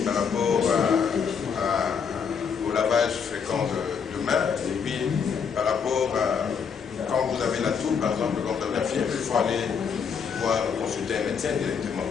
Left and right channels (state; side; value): quieter; right; 6.5 dB